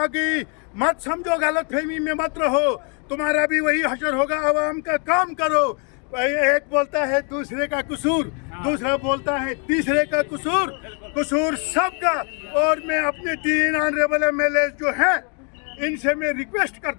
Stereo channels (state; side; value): quieter; right; 39.0 dB